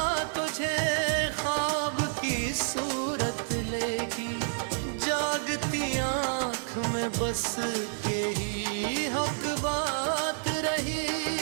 तुझे ख्वाब की सूरत लेगी, जागती आँख में बस के ही हक बात रही।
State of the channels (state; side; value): silent; left; digital silence